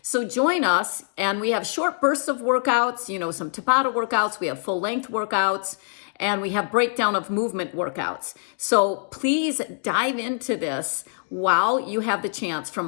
so join us, and we have short bursts of workouts, some Tabata workouts, we have full length workouts, and we have breakdown of movement workouts. So please dive into this while you have the chance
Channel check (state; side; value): silent; right; digital silence